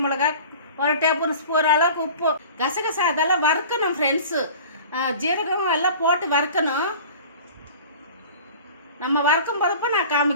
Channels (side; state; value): both; inverted; correlation -0.42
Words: மிளகா, 1 டேபிள் ஸ்பூன் அளவுக்கு உப்பு. கசகசா அதெல்லாம் வறுக்கணும் ஃப்ரெண்ட்ஸு. ஜீரகம் எல்லாம் போட்டு வறுக்கணும். நம்ம வறுக்கும் போதப்போ நான்